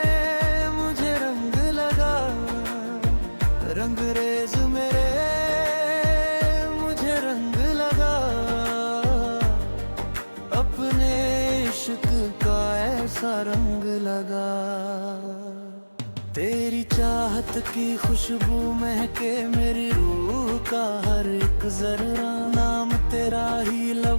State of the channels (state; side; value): inverted; both; correlation -1.00